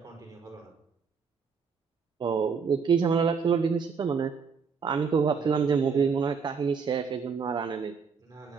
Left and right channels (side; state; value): left; quieter; 5.8 dB